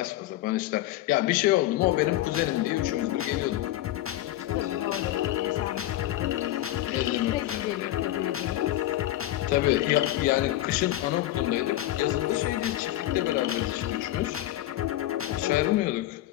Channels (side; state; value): right; quieter; 14.7 dB